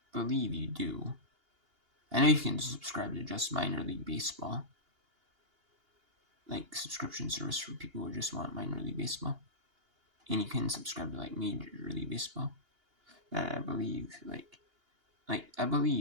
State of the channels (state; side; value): late; left; 2.8 ms